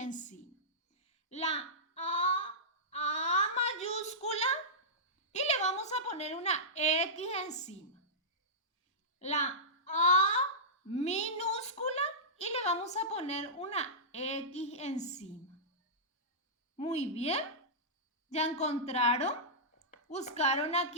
La A mayúscula y le vamos a poner una X encima. La A minúscula y le vamos a poner una X encima. Muy bien. ¿Ya encontraron? ¿Buscaron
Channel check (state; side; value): normal; both; correlation -0.15